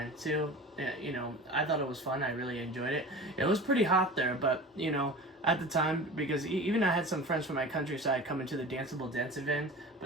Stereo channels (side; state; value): both; normal; correlation 0.36